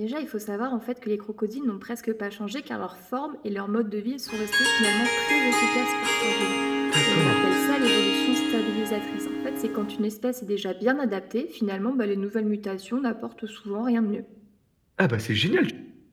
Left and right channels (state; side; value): identical; both; correlation 1.00